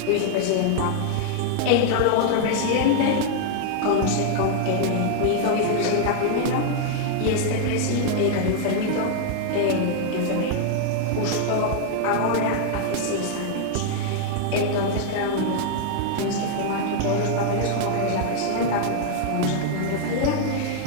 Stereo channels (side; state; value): both; different; correlation 0.00